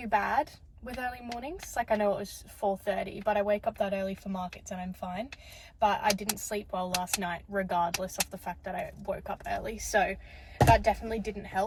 bad with early mornings. Like, I know it was 4:30, but I wake up that early for markets and I'm fine. But I didn't sleep well last night, regardless of the fact that I woke up early. So that definitely didn't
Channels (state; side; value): identical; both; correlation 1.00